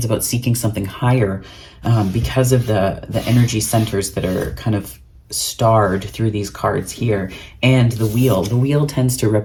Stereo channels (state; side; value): identical; both; correlation 1.00